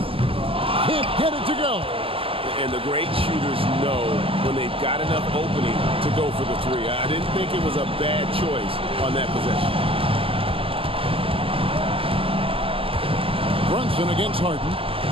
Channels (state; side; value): late; left; 0.26 ms